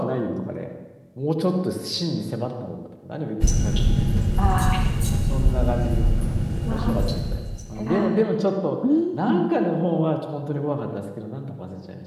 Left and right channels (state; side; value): identical; both; correlation 1.00